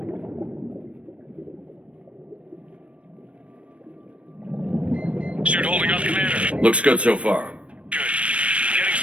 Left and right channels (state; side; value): late; left; 0.062 ms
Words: Suit holding up, Commander. Looks good so far. Good. Getting